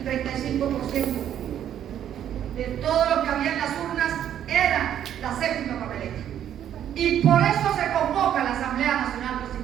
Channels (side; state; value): left; quieter; 10.3 dB